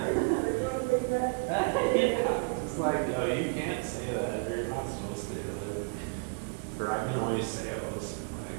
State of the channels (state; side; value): quieter; left; 33.7 dB